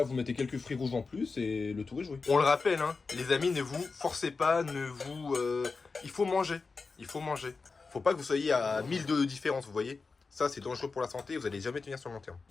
vous mettez quelques fruits rouges en plus et le tour est joué. On le rappelle, hein, les amis, ne vous forcez pas, il faut manger. Il faut manger. Faut pas que vous soyez à 1000 de différence, vous voyez. Ça, c'est dangereux pour la santé, vous allez jamais tenir sur le long terme.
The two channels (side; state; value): right; quieter; 4.4 dB